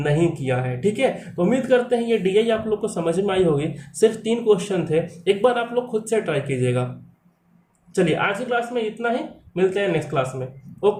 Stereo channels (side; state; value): both; identical; correlation 1.00